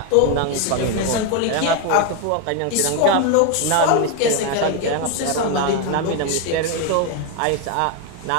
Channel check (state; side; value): different; both; correlation 0.01